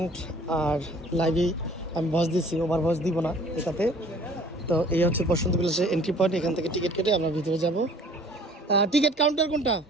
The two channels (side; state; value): both; normal; correlation 0.52